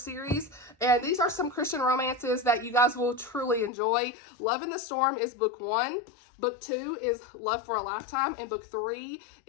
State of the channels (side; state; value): right; drops out; at 3.7 s